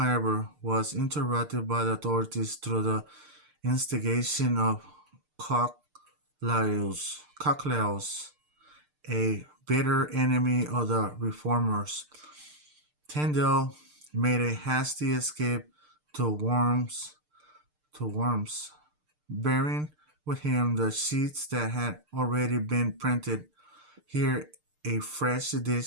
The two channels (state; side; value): late; left; 6.6 ms